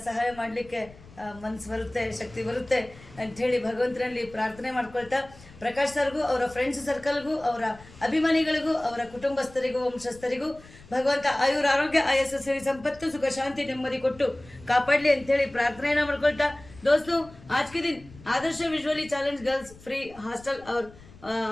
ಸಹಾಯ ಮಾಡಲಿಕ್ಕೆ ಮನಸ್ಸು ಬರುತ್ತೆ, ಶಕ್ತಿ ಬರುತ್ತೆ ಅಂಥೇಳಿ ಭಗವಂತನಲ್ಲಿ ಪ್ರಾರ್ಥನೆ ಮಾಡ್ಕೊಳ್ತಾ, ಪ್ರಕಾಶ್ ಸರ್ಗೂ ಅವರ ಫ್ರೆಂಡ್ಸ್ ಸರ್ಕಲ್ಗೂ ಅವರ ಅಭಿಮಾನಿಗಳಿಗೂ ಅವರ ಕುಟುಂಬಸ್ಥರಿಗೂ ವಂಶಸ್ಥರಿಗೂ ಭಗವಂತ ಆಯುರ ಆರೋಗ್ಯ ಆಯಸ್ಸು ಸಿರಿ ಸಂಪತ್ತು ಸುಖ ಶಾಂತಿ ನೆಮ್ಮದಿ ಕೊಟ್ಟು ಕಾಪಾಡಲಿ ಅಂಥೇಳಿ ಪ್ರಾರ್ಥನೆಯನ್ನು ಮಾಡ್ಕೊಳ್ತಾ, दोस्तों आज के दिन Adarsh visually challenged girls free hostel और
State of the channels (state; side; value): noise; left; rumble, 21 dB below the sound